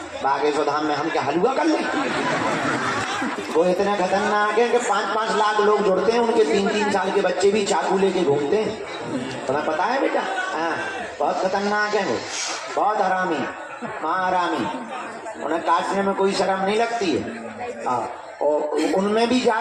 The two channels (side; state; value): both; identical; correlation 1.00